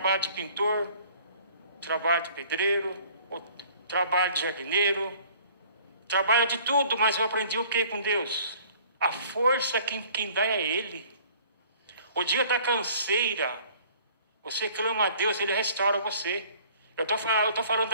de pintor, trabalho de pedreiro, trabalho de jardineiro, trabalho de tudo, mas eu aprendi o que com Deus? A força quem dá é Ele. O dia da canseira, você clama a Deus, Ele restaura você. Eu estou falando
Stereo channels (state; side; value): inverted; both; correlation -0.53